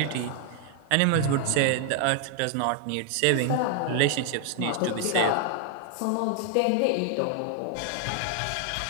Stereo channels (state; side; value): different; both; correlation 0.00